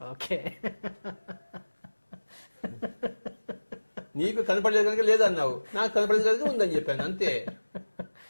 ఓకే, నీకు కనపడలేదు కనుక లేదన్నావు, నాకు కనపడలేదు కనుక ఉందని చెప్పాను, అంతే.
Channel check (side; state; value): both; inverted; correlation -1.00